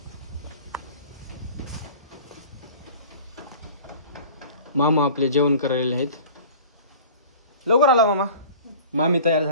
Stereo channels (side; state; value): both; inverted; correlation -0.43